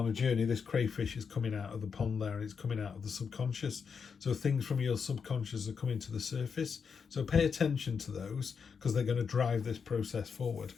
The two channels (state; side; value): quieter; right; 6.1 dB